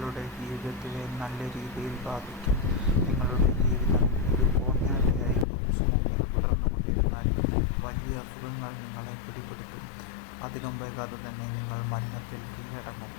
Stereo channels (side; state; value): right; drops out; at 5.5 s